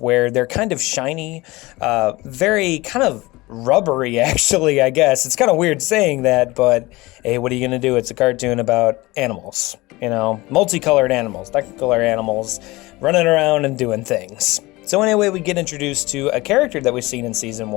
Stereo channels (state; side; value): quieter; right; 21.1 dB